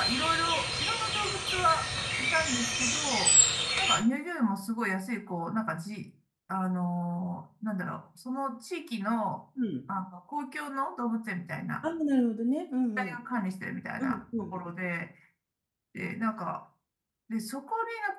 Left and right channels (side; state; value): both; identical; correlation 1.00